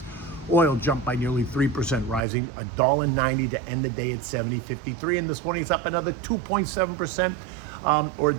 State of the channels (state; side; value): drops out; left; at 2.2 s